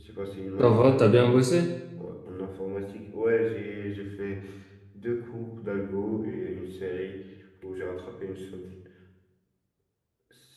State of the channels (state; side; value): identical; both; correlation 1.00